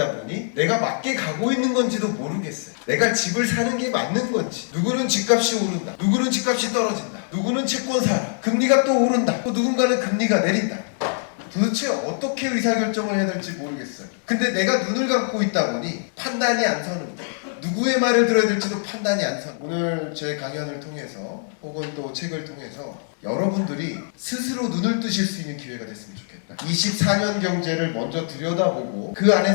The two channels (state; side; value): silent; right; digital silence